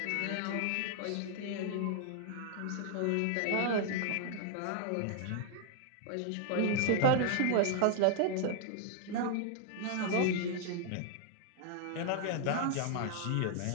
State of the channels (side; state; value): both; different; correlation 0.00